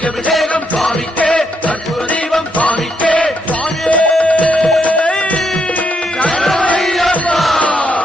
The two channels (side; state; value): both; normal; correlation 0.77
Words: அபிஷேகம் சுவாமிக்கே கற்பூர தீபம் சுவாமிக்கே சுவாமியே சரணமையப்பா.